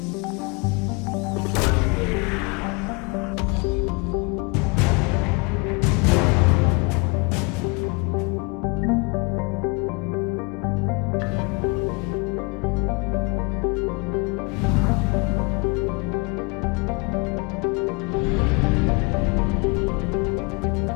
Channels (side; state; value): right; quieter; 29.5 dB